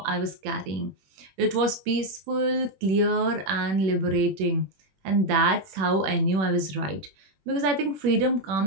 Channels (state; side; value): late; left; 21 ms